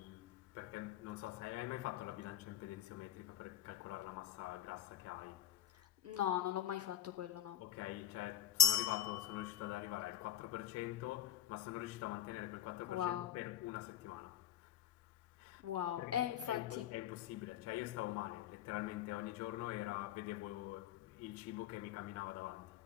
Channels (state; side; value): quieter; right; 10.8 dB